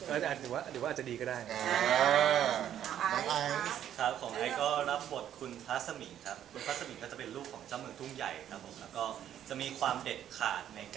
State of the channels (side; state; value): left; quieter; 10.6 dB